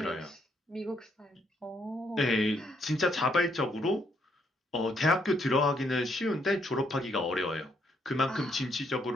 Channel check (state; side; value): normal; both; correlation 0.73